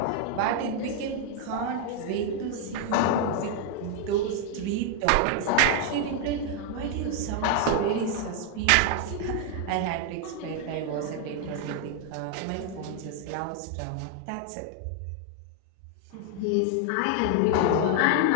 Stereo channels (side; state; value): both; different; correlation 0.00